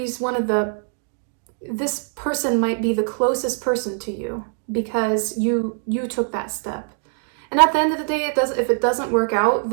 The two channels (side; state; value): left; silent; 64 dB below the other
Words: This person might be the closest person to you because you took that step. And at the end of the day, if it doesn't work out,